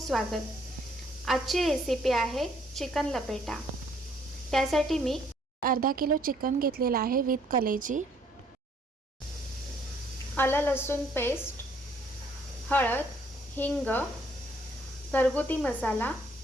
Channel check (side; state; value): both; normal; correlation 0.65